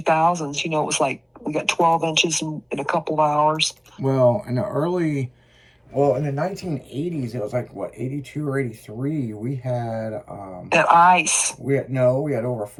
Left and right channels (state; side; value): identical; both; correlation 1.00